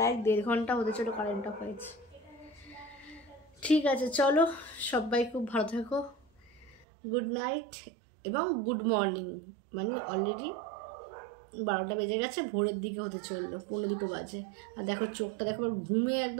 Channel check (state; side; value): drops out; left; at 6.9 s